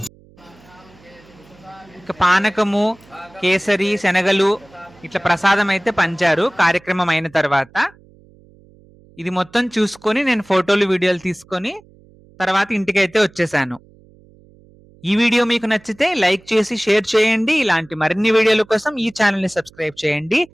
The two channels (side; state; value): right; noise; hum, 27 dB below the sound